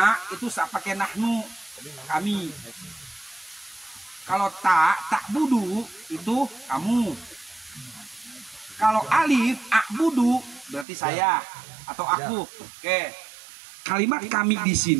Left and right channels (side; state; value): left; drops out; at 10.9 s